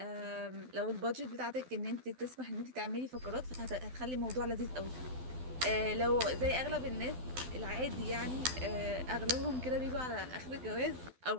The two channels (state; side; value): late; left; 12 ms